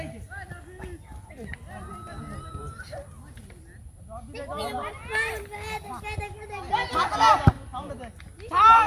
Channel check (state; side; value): identical; both; correlation 1.00